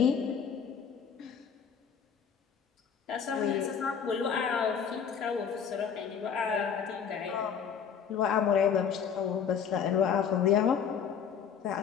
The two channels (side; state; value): right; quieter; 7.3 dB